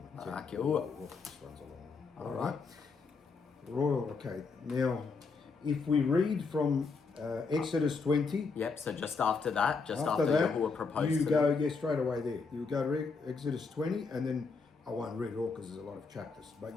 Barak Yahuwah. This one's a long one. All right. Royal, okay. Now, if we read from Exodus 20, Yep, so just after that, that, Yahuwah proposed you to go, them. yeah, straight away there. You go to Exodus 20, and then I won't read it all because there's a lot of chapters,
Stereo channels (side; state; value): right; quieter; 4.6 dB